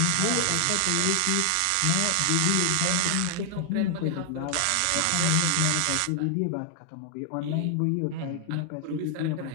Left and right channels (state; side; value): different; both; correlation 0.00